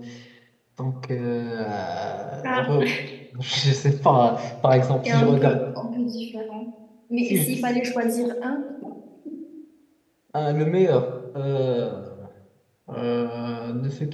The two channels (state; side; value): identical; both; correlation 1.00